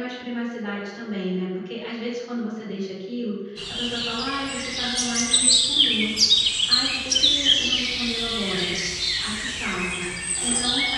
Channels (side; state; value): both; identical; correlation 1.00